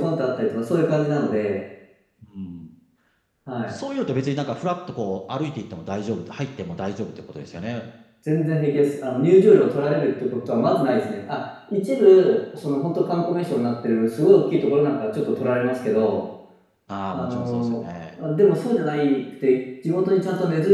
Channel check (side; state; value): both; identical; correlation 1.00